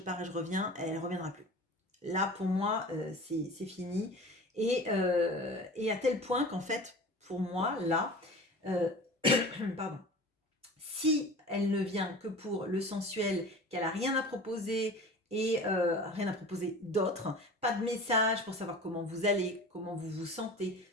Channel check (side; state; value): both; normal; correlation 0.38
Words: et je reviens, elle ne reviendra plus. Là, pour moi, c'est fini. Et à tel point qu'en fait, pour moi, là, pardon, si elle ne vient que pour le sensuel, qu'elle n'a rien à proposer et rien à proposer d'autre, pas de message pour savoir comment vous allez, comment vous vous sentez,